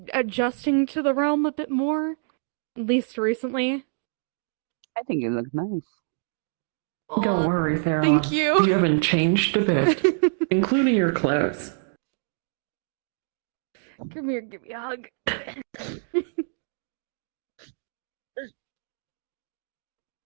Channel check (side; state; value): left; silent; digital silence